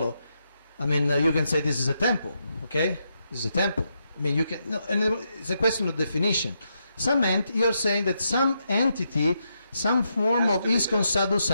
I mean, you can say this is a temple, okay? This is a temple. I mean, you can, no, and it's a question of definition. You're saying that some entity, some form of ISKCON Sadhu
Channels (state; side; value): inverted; both; correlation -0.82